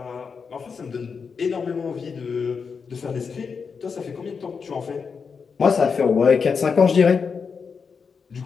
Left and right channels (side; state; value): right; quieter; 5.7 dB